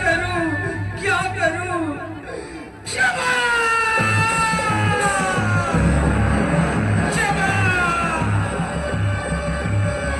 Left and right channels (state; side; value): identical; both; correlation 1.00